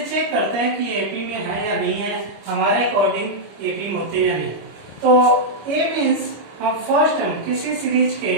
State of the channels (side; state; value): left; late; 25 ms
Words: चेक करते हैं कि एपी में है या नहीं है, हमारे अकॉर्डिंग एपी में होते हैं या नहीं। तो ए मीन्स हम फर्स्ट टर्म किसी सीरीज के